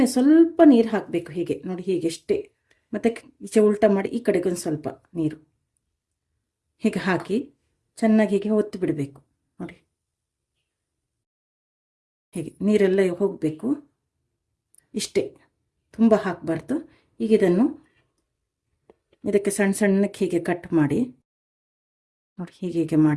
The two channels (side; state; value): both; identical; correlation 1.00